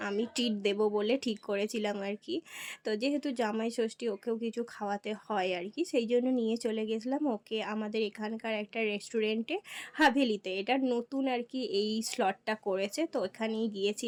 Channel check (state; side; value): identical; both; correlation 1.00